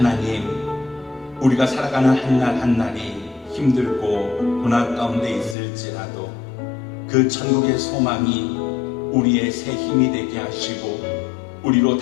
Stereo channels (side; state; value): right; drops out; at 5.6 s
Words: 우리가 살아가는 한날 한날이 힘들고 고난 가운데 있을지라도 그 천국의 소망이 우리의 새 힘이 되게 하시고 우리로